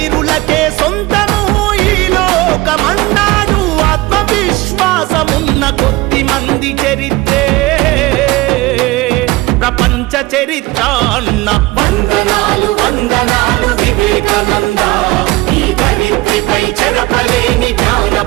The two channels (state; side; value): quieter; left; 20.2 dB